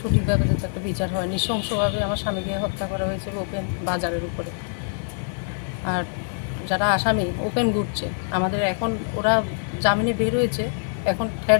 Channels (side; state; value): right; silent; 62 dB below the other